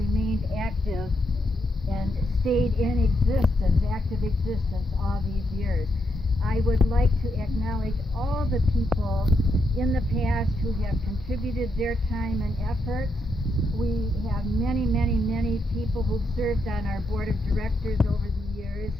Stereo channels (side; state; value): both; normal; correlation 0.81